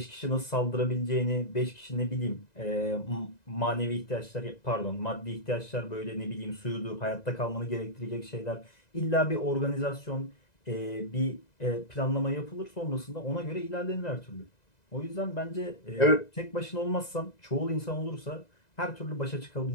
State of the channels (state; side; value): late; right; 2.0 ms